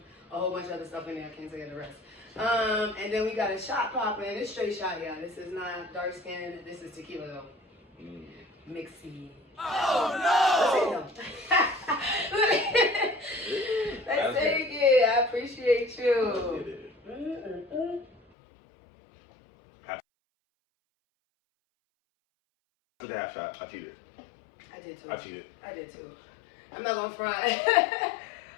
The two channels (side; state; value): right; drops out; at 18.2 s